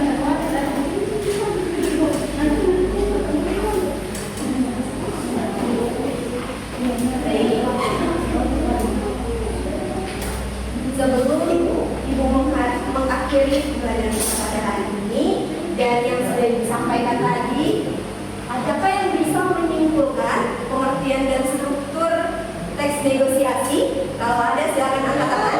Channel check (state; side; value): identical; both; correlation 1.00